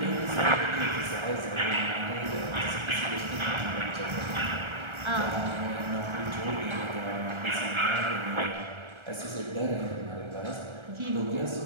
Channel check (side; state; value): left; late; 1.4 ms